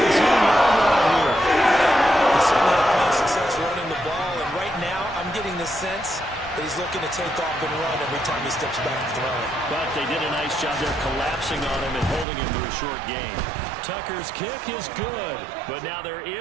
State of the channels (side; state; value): left; drops out; at 12.2 s